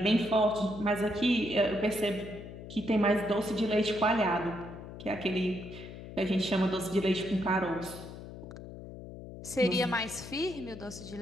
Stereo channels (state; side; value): noise; left; hum, 12 dB below the sound